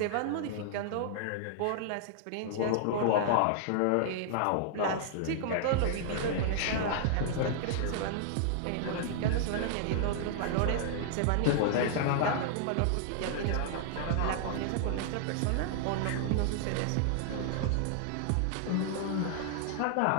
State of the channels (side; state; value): both; different; correlation -0.01